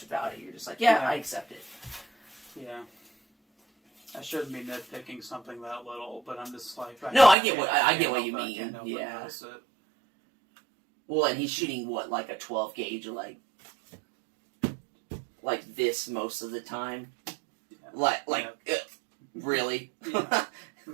about it. You're just like, I accept it. Yeah. I shouldn't be nitpicking something that little, but I'm just like... I get what you mean. Yeah. Well, and he's shooting, like a 12 gauge, like this most of the time? Yeah. Really? Yeah.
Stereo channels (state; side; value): drops out; left; at 7.4 s